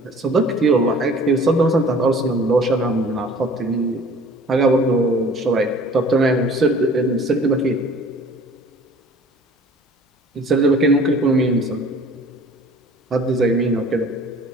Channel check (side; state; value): both; normal; correlation 0.49